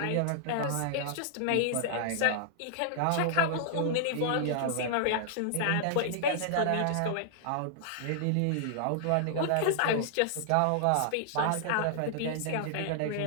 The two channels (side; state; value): both; different; correlation -0.01